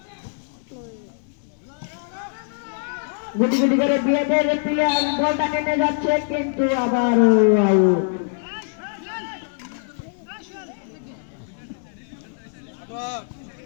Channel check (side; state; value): right; silent; 63 dB below the other